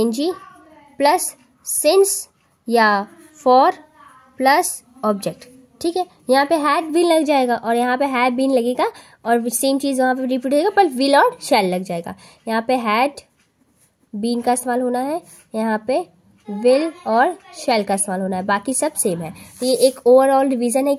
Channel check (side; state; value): both; identical; correlation 1.00